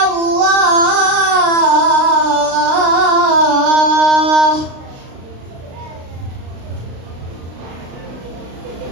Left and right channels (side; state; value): left; late; 36 ms